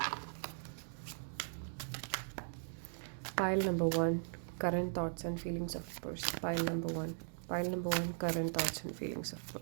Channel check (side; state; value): left; silent; digital silence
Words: Pile number 1, current thoughts and feelings of person. Pile number 1, current thoughts and feelings of